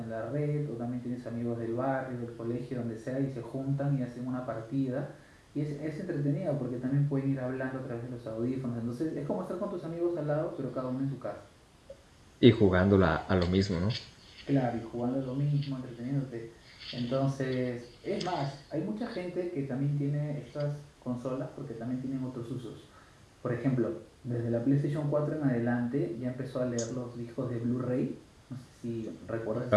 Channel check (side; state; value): both; identical; correlation 1.00